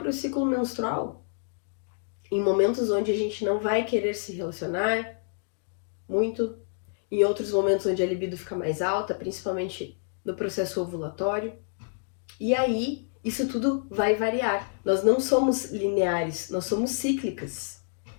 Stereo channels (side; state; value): right; silent; digital silence